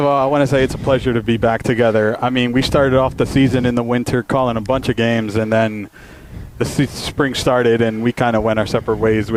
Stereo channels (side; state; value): both; identical; correlation 1.00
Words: all, I want to say it's a pleasure to be back together. I mean, we started off the season in the winter calling a bunch of games, and then the spring started, and we kind of went our separate ways